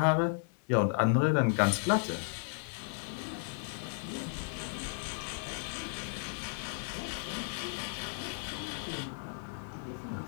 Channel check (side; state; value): right; silent; 55 dB below the other